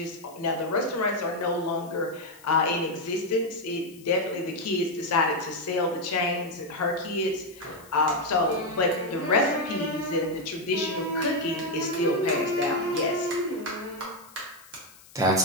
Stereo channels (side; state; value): left; noise; hiss, 23 dB below the sound